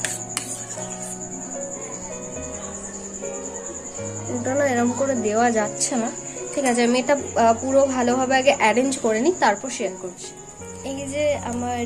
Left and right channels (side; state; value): both; identical; correlation 1.00